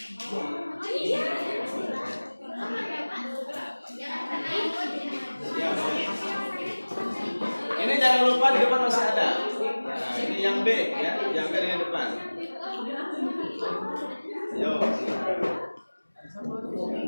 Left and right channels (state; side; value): inverted; both; correlation -1.00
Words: Ya, ini jangan lupa di depan masih ada. Nah, ini yang B ya, yang B di depan. Yo.